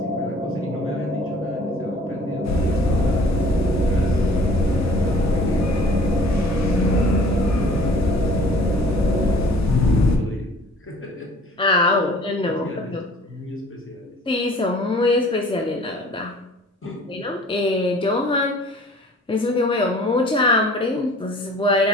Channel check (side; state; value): both; normal; correlation 0.51